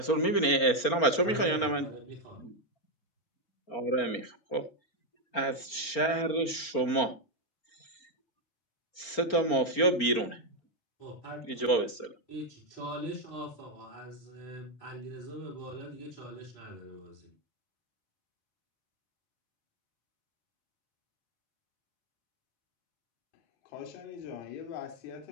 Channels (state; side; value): late; right; 4.4 ms